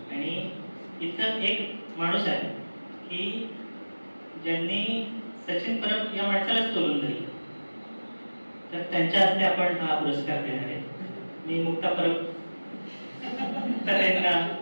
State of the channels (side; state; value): both; inverted; correlation -1.00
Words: आणि इथं एक माणूस आहे की ज्यांनी सचिन परब या माणसालाच तोलून दिली, तर त्यांच्या हस्ते आपण हा पुरस्कार देणार आहे. मी मुक्ता परब तर यांना